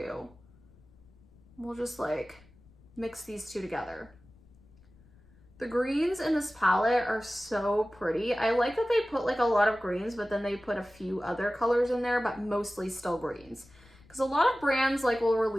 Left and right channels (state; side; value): noise; left; rumble, 27 dB below the sound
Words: We'll just like mix these two together. The greens in this palette are so pretty. I like that they put like a lot of greens, but then they put a few other colors in there, but mostly still greens. Because a lot of brands like will